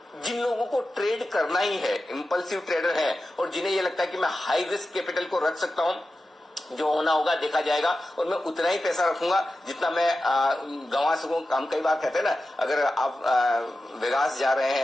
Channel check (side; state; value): both; normal; correlation 0.93